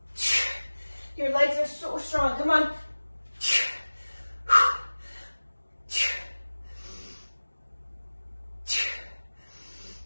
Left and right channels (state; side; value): inverted; both; correlation -1.00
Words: Your legs are so strong. Come on.